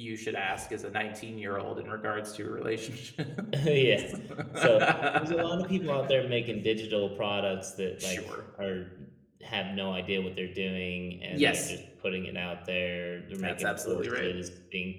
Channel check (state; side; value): identical; both; correlation 1.00